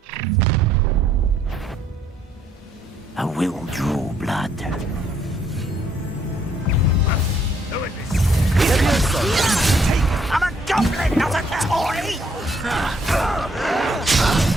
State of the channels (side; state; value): both; normal; correlation 0.69